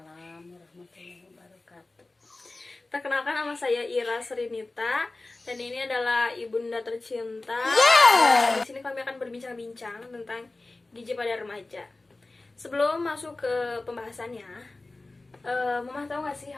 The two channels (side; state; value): right; quieter; 3.1 dB